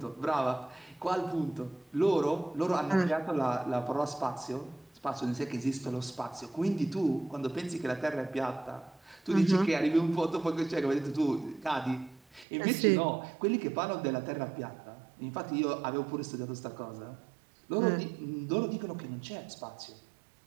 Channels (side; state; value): left; drops out; at 12.5 s